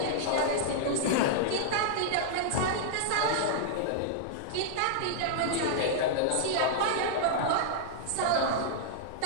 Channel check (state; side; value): different; both; correlation -0.01